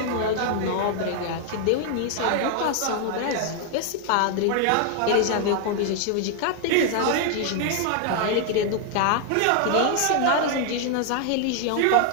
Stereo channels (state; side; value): different; both; correlation 0.00